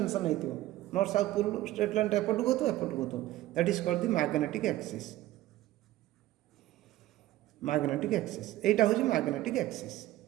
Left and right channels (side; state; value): left; quieter; 15.5 dB